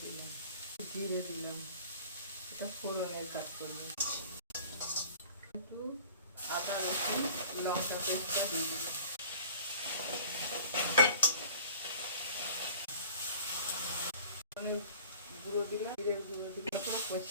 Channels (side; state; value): both; inverted; correlation -0.46